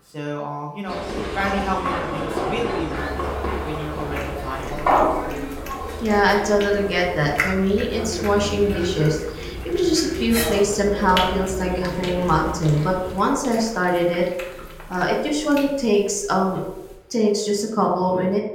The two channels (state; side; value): identical; both; correlation 1.00